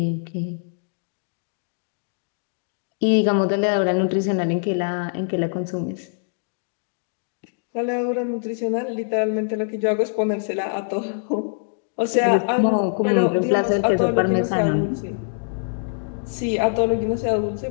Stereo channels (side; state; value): right; silent; digital silence